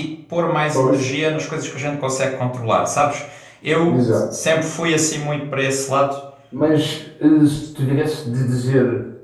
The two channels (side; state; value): both; identical; correlation 1.00